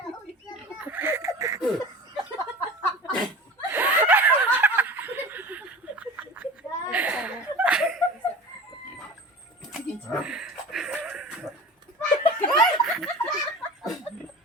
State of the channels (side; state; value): both; normal; correlation 0.36